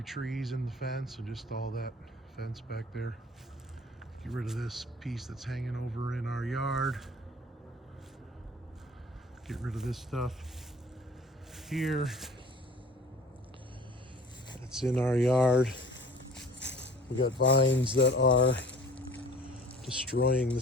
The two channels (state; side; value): normal; both; correlation 0.47